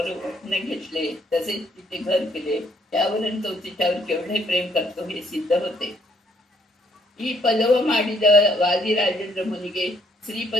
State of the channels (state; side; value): normal; both; correlation 0.67